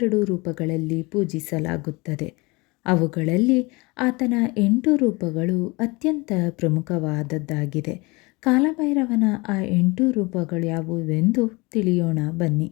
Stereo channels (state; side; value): quieter; right; 25.3 dB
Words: ರೂಪಗಳಲ್ಲಿ ಪೂಜಿಸಲಾಗುತ್ತದೆ. ಅವುಗಳಲ್ಲಿ ಆತನ 8 ರೂಪಗಳು ಅತ್ಯಂತ ಪ್ರಮುಖವಾದದ್ದಾಗಿದೆ. ಕಾಲಭೈರವನ ಆ 8 ರೂಪಗಳು ಯಾವುವೆಂದು ತಿಳಿಯೋಣ ಬನ್ನಿ.